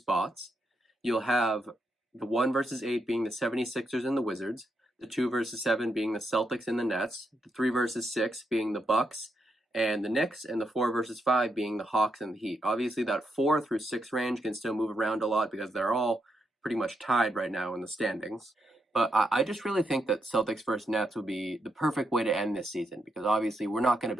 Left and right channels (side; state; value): both; normal; correlation 0.81